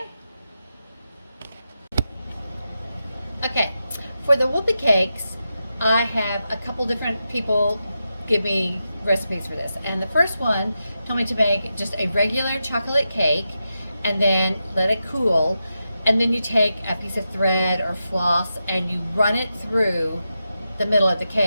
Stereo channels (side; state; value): both; inverted; correlation -0.89